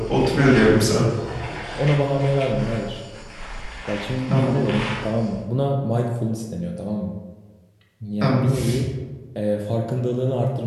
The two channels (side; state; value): both; identical; correlation 1.00